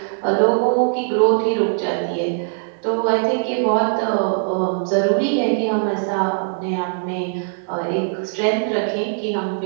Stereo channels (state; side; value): silent; left; 62 dB below the other